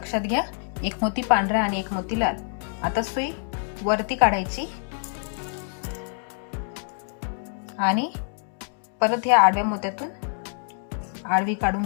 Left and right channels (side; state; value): right; silent; 57 dB below the other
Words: घ्या, एक मोती पांढरा आणि एक मोती लाल. आता सुई वरती काढायची आणि परत ह्या आडव्या मोत्यातून आडवी काढून